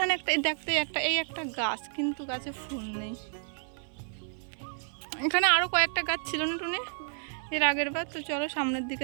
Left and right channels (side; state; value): left; silent; 57 dB below the other